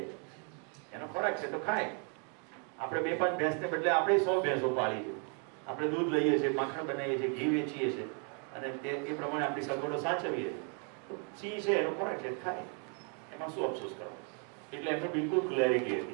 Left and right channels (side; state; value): left; quieter; 39.9 dB